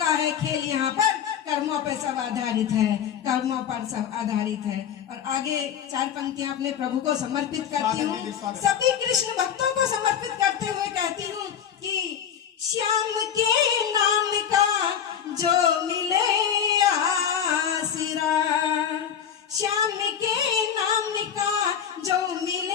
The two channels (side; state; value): right; quieter; 8.6 dB